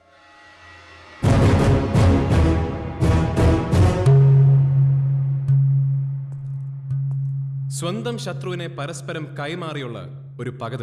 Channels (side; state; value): both; identical; correlation 1.00